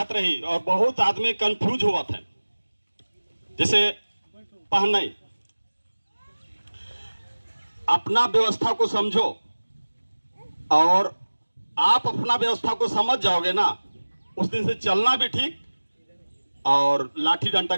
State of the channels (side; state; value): both; inverted; correlation -1.00